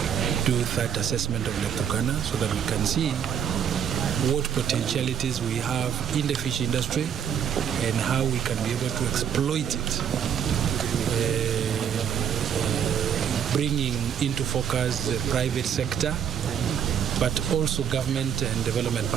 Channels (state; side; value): quieter; left; 8.4 dB